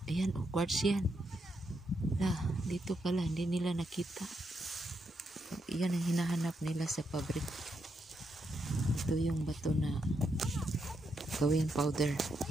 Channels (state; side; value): normal; both; correlation 0.81